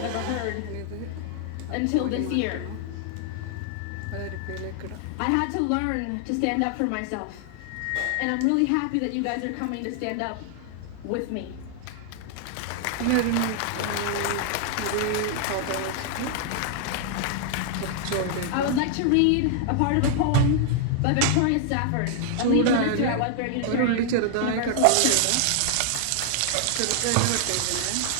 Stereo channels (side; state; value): both; different; correlation 0.00